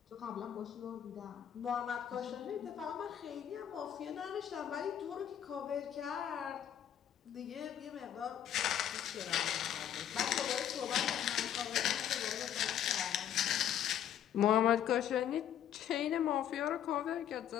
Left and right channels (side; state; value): right; quieter; 10.0 dB